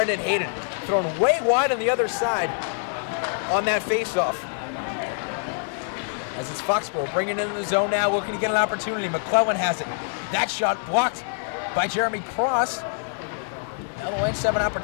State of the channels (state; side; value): silent; right; digital silence